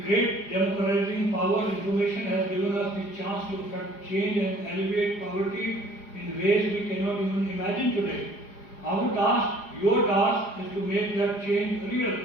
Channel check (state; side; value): late; right; 4.9 ms